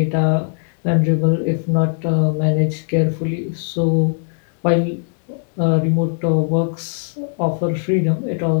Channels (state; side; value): silent; right; 66 dB below the other